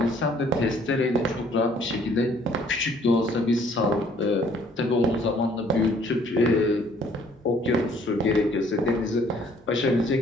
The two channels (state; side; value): normal; both; correlation 0.60